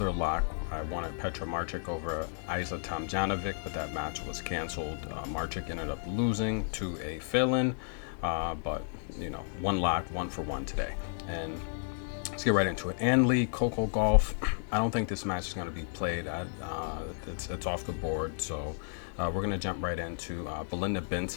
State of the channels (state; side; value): silent; right; 56 dB below the other